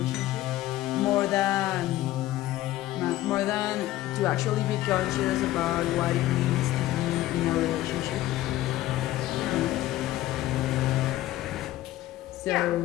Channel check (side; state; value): right; quieter; 15.3 dB